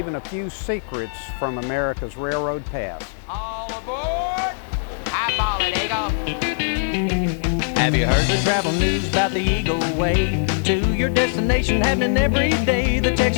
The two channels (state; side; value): silent; right; digital silence